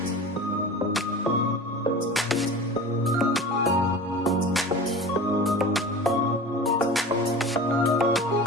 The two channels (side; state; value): both; normal; correlation 0.36